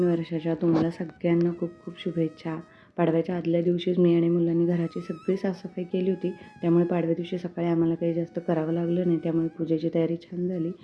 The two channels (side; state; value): both; identical; correlation 1.00